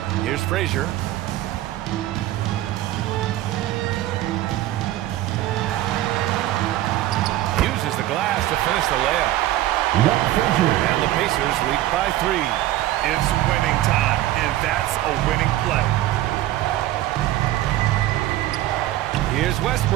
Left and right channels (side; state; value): left; quieter; 14.6 dB